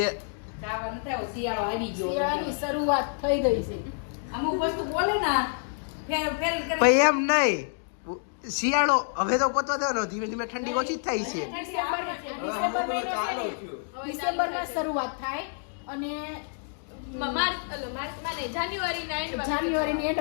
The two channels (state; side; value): silent; right; digital silence